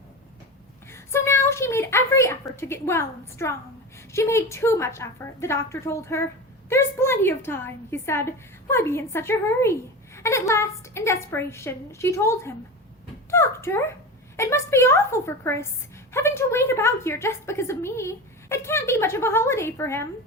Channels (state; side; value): normal; both; correlation 0.26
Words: So now she made every effort to get well and strong. She made too much effort, the doctor told her. "There's plenty of time," he said. "Why be in such a hurry?" And at last, in desperation, she told him. "Doctor, it must be awful for Chris, having to wait about here just because of me. It can't be much of a holiday for him."